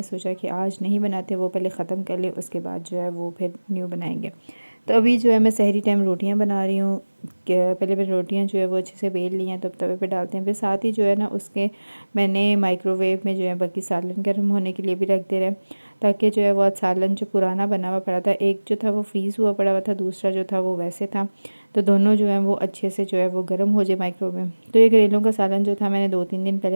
सोचा कि आज नहीं बनाते, वो पहले ख़त्म कर ले, उसके बाद जो है वो फिर न्यू बनाएंगे। तो अभी जो है मैं सहरी टाइम रोटियां बना रही हूँ। पहले मैंने रोटियां जो है वो अच्छे से बेल ली हैं, तब तवे पे डालते हैं। फिर साथ ही जो है ना उसके मैंने माइक्रोवेव में जो है बाकी सालन गर्म होने के लिए भी रख दे रहे हैं, ताकि जो है वो सालन जो पुराना बना हुआ पड़ा था, एक जो था वो फ्रीज़ हुआ पड़ा हुआ था, दूसरा जो था वो वैसे था। तो दोनों जो है वो अच्छे से जो है वो गर्म हो जाए माइक्रोवेव में। तो ये करेलों का सालन जो था मैंने 2-3 दिन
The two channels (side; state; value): both; inverted; correlation -1.00